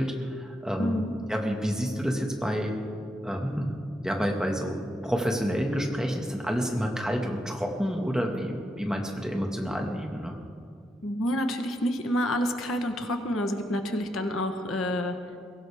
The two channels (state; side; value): normal; both; correlation 0.82